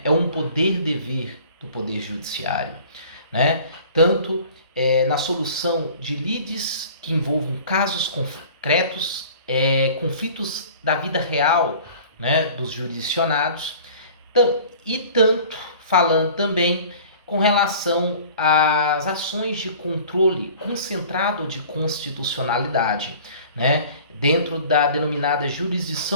É um poder-dever do Poder Judiciário, né? Tanto na solução de lides que envolvam casos concretos, conflitos da vida real, né, dos jurisdicionados, e tanto falando também com relação às ações de controle concentrado de constitucionalidade, né, dentro da denominada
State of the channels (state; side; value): inverted; both; correlation -0.46